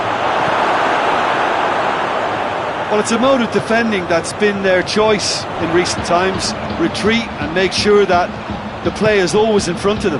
Well, it's a mode of defending that's been their choice in recent times. Retreat and make sure that the play is always in front of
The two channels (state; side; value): identical; both; correlation 1.00